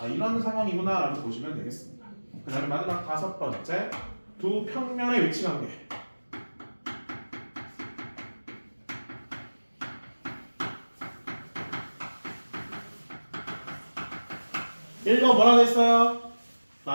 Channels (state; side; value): inverted; both; correlation -1.00